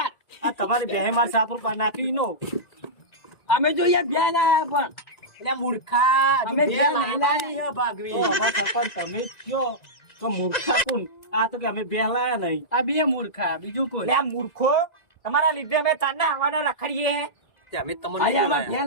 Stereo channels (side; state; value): right; late; 1.9 ms